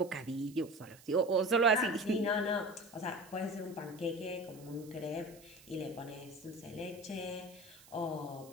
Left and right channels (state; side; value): noise; right; hiss, 22 dB below the sound